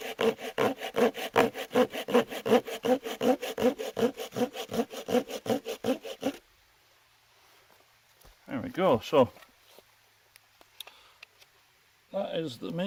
There we go. So that is the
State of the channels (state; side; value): identical; both; correlation 1.00